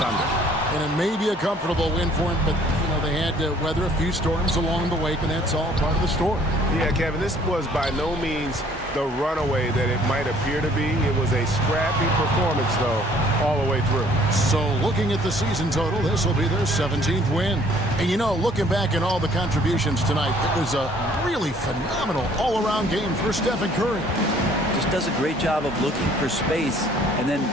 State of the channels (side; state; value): both; normal; correlation 0.58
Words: And it may be a comfortable win for them, but they had to weather a few storms along the way, and that's all part of the story. Yeah, Kevin, this was by no means the runaway that it might appear to be. It was a scrappy performance, though, all the way through. So looking at the season total, this will be their 17th win. And looking back at all the contributions tonight, it was a really phenomenal all-around game for Stephen Curry. Just does a great job of looking for space and then